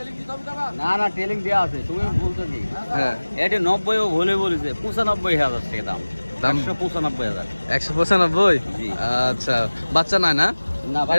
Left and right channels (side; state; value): both; inverted; correlation -1.00